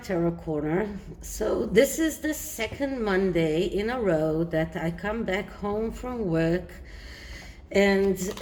Corner. So this is the second Monday in a row that I come back home from work, and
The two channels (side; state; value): both; identical; correlation 1.00